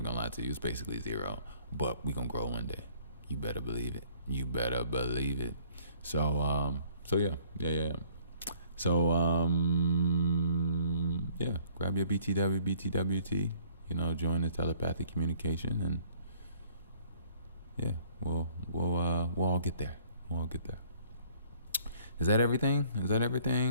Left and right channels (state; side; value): inverted; both; correlation -0.59